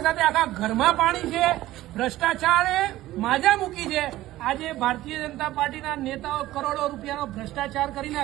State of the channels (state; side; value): quieter; left; 15.8 dB